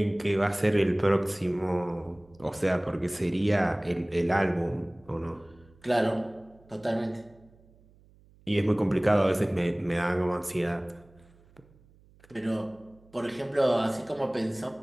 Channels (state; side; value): noise; right; hum, 28 dB below the sound